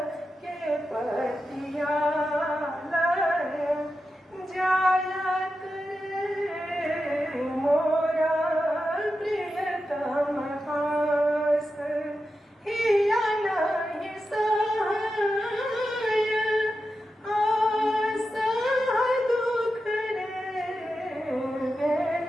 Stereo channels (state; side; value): normal; both; correlation 0.90